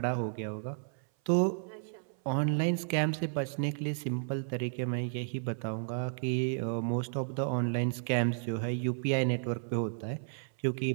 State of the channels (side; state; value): left; silent; 56 dB below the other